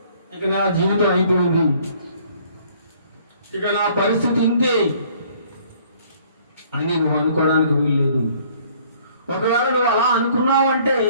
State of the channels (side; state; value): both; inverted; correlation -0.59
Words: ఇక నా జీవితం అయిపోయింది, ఇక నా పరిస్థితి ఇంతే అని నువ్వు అనుకోవడానికి వీల్లేదు. ఒకవేళ నువ్వు అలా అనుకున్నావు అంటే